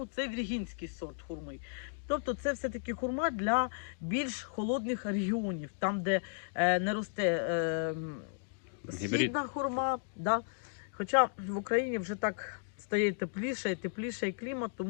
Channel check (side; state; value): right; silent; digital silence